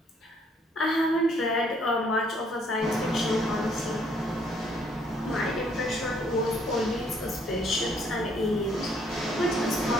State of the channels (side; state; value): both; normal; correlation 0.66